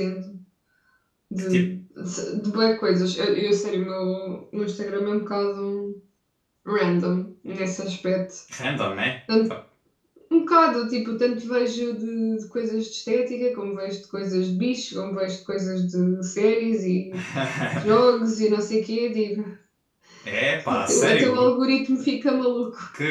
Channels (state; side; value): identical; both; correlation 1.00